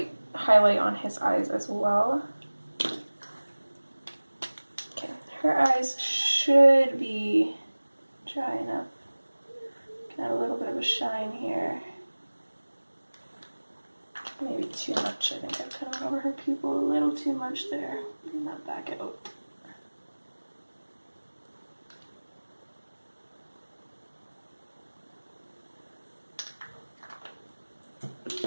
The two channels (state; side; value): inverted; both; correlation -1.00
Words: highlight on his eyes as well. Okay, her eyes should be dry enough. Add a little bit of a shine here. Maybe too much. I think I've kind of went over her pupil a little too much there. Bring that back out.